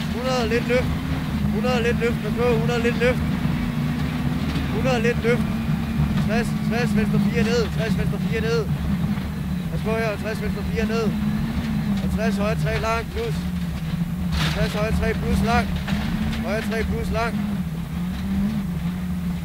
100 lidt løft, 100 lidt løft, pas på, 100 lidt løft, 100 lidt løft, 60, 60, venstre 4 ned, 60, venstre 4 ned, pas på her, 60, venstre 4 ned, og 60, højre 3 lang, plus, 60, højre 3 plus lang, højre 3 plus lang,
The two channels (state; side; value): identical; both; correlation 1.00